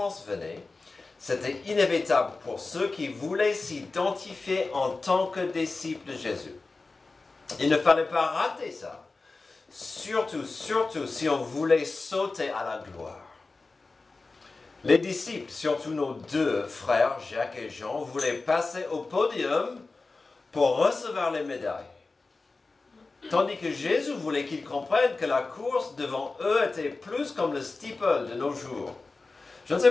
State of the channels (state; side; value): quieter; right; 3.7 dB